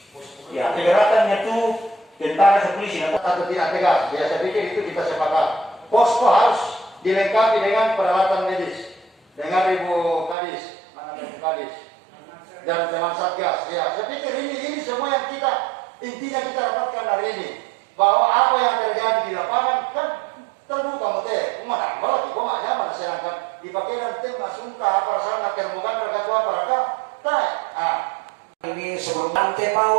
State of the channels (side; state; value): left; drops out; at 10.4 s